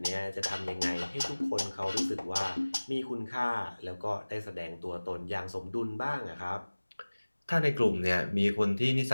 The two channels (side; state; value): both; inverted; correlation -1.00